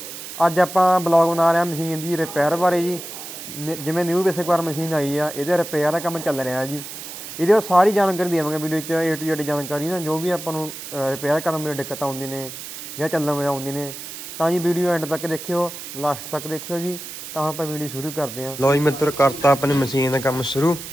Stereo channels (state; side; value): noise; right; hiss, 10 dB below the sound